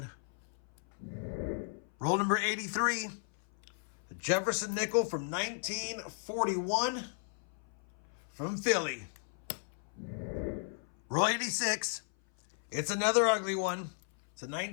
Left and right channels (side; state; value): right; silent; 54 dB below the other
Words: Roll number 83. A Jefferson nickel from 1941 from Philly. Roll 86. It's another ugly one. It's a